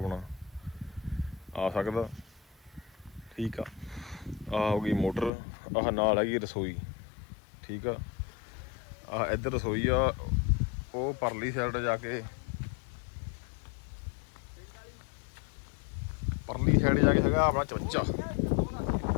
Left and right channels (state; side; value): drops out; right; at 5.3 s